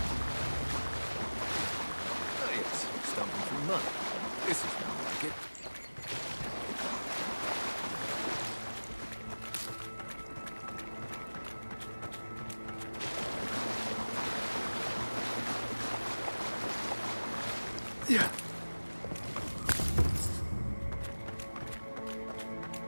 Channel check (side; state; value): both; inverted; correlation -1.00